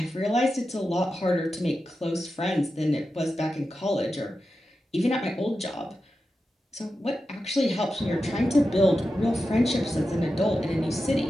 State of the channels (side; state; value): both; normal; correlation 0.91